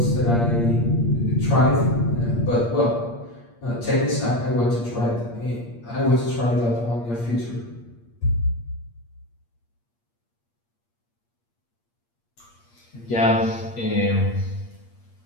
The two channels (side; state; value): right; late; 8.5 ms